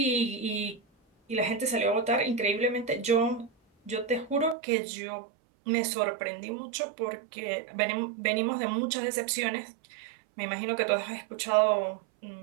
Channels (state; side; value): drops out; left; at 4.5 s